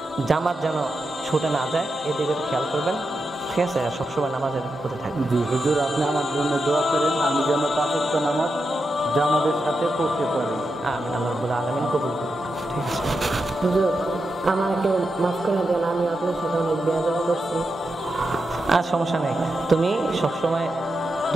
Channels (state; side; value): normal; both; correlation 0.87